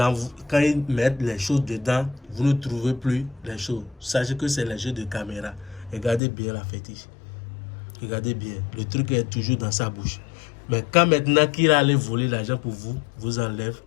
mettent les choses dedans, vous ne trouvez plus les choses. Sachez que c'est les jeux de caméra. Regardez bien la fétiche. Regardez bien. Le truc est toujours dans sa bouche. Mais quand maintenant qu'il a allé voler l'argent pour vous, vous enlève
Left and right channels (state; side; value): drops out; right; at 6.2 s